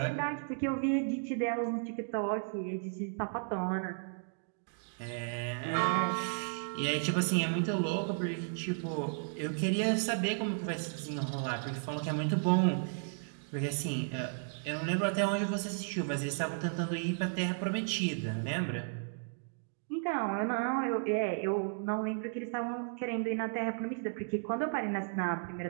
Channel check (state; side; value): silent; left; digital silence